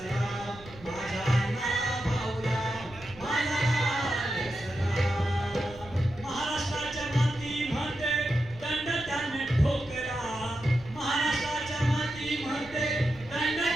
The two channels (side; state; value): right; noise; rumble, 19 dB below the sound